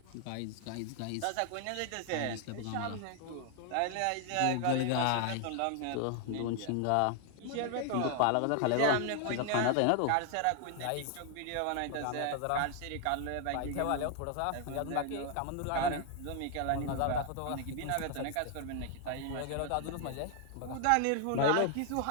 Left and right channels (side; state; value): both; different; correlation 0.00